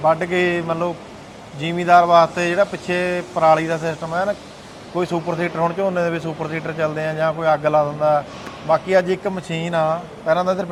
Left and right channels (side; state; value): both; identical; correlation 1.00